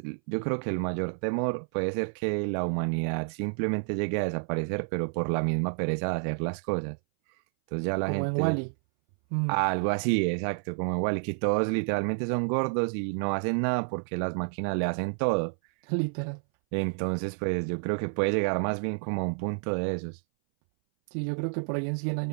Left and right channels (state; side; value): silent; left; 58 dB below the other